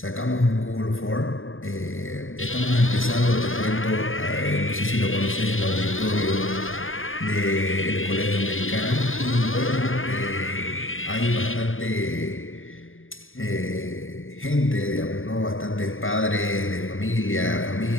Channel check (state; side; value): late; right; 0.59 ms